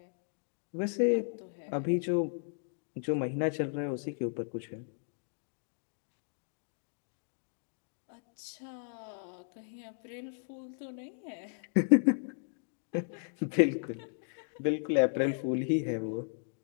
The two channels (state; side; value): silent; right; digital silence